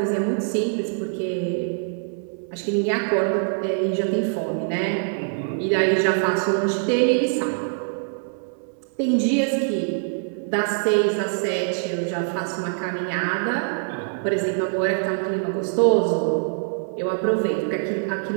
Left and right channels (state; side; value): silent; left; 63 dB below the other